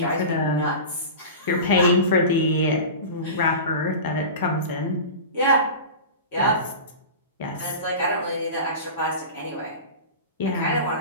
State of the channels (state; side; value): inverted; both; correlation -0.31